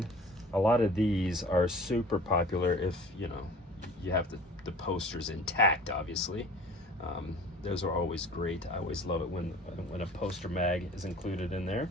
A lot of these are super popular if, you know, you have the posters intact, obviously. Those are always great. I always love it when a poster mag is included in there.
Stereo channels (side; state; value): both; normal; correlation 0.45